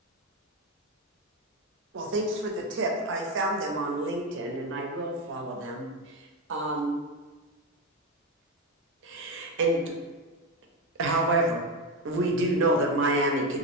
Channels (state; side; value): normal; both; correlation 0.14